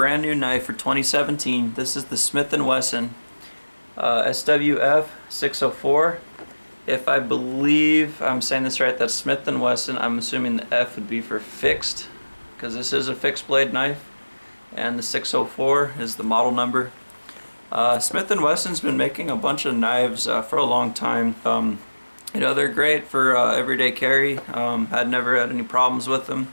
new knife for 2017. This is the Smith&Wesson SWF 604. If I believe I'm saying this right, that's Smith&Wesson. I'm assuming the F would be for fixed, because this is a fixed blade knife, and the 604 is the model number. Smith&Wesson's been making a bunch of knives for a long time. You know, they're great for everyday carry. I'd never had any problems with them.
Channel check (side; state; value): both; inverted; correlation -1.00